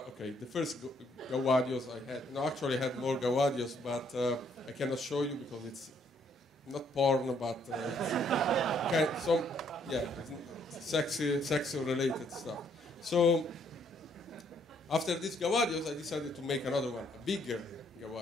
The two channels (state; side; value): normal; both; correlation 0.68